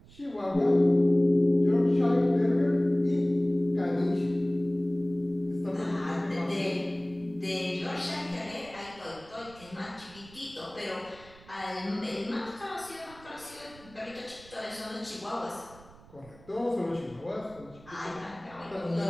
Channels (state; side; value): noise; right; rumble, 23 dB below the sound